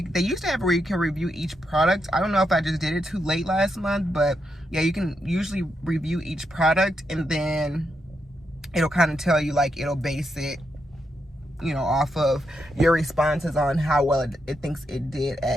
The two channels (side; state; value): both; normal; correlation 0.83